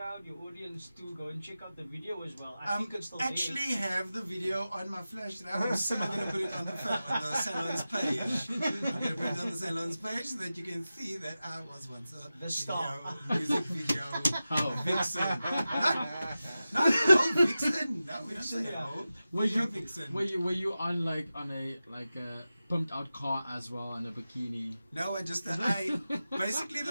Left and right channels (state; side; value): inverted; both; correlation -0.94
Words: your audience to go and check out the video as well. I think it's still actually have the video on my flash drive. I'm going to put it on the salon's page. I'm going to put it on the salon's page so that you can see that I was once a star. Music video vixen. Not vixen. No, we don't say were you on like a pumped out car as well in a bikini? No, basically